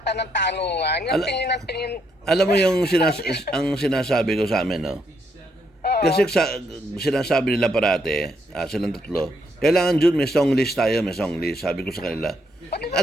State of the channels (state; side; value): normal; both; correlation 0.75